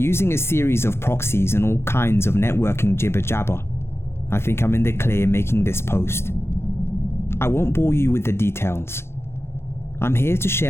a series of proxies and all kinds of networking jibber jabber, I think I'm in the clear making this post. I won't bore you with the details. I'm here to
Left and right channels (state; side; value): late; right; 0.12 ms